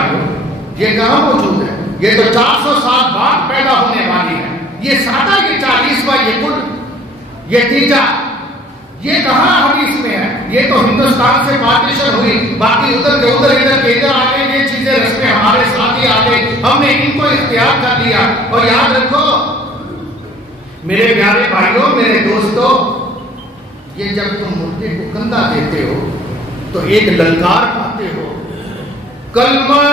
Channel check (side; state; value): both; normal; correlation 0.53